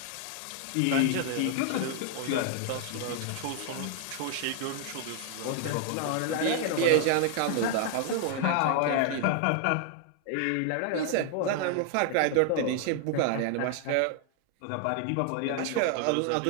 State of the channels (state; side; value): different; both; correlation 0.00